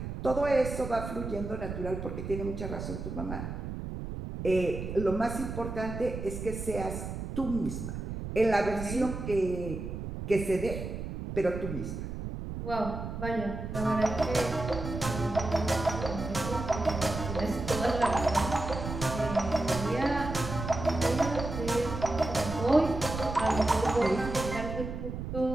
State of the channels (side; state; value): right; noise; rumble, 6 dB below the sound